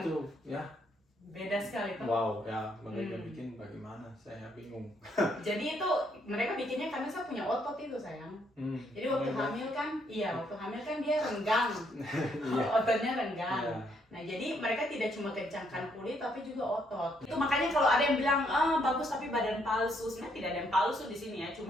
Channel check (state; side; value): normal; both; correlation 0.72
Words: Itu ya. Beda sekali tuh. Wow, ya mereka bikin bagaimana? Saya bingung. Jadi itu mereka bikinnya karena saya punya otot itu sayang. Jadi waktu hamil kan, waktu hamil kan dia renggang, ototnya renggang. Iya. Nah jadi mereka tidak cuma kencangkan kulit tapi juga otot. Itu makanya kalau ada yang bilang bagus tapi badan palsu, sebenarnya tidak ada yang palsu di sini ya.